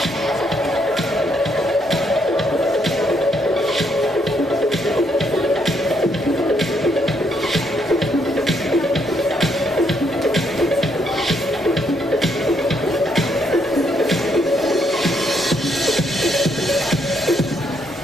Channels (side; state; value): both; normal; correlation 0.74